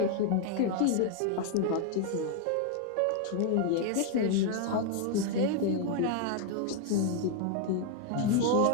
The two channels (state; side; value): different; both; correlation 0.00